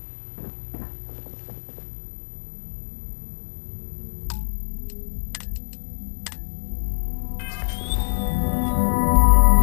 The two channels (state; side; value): silent; right; digital silence